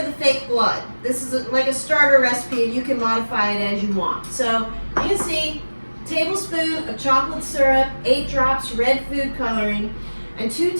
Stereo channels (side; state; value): both; inverted; correlation -1.00